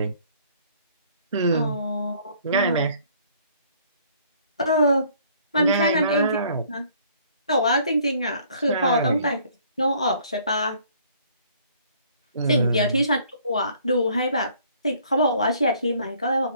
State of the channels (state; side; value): inverted; both; correlation -0.60